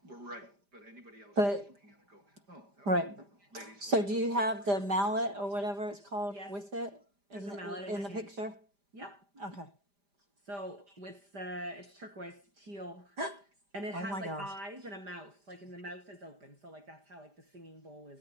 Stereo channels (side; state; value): left; late; 5.0 ms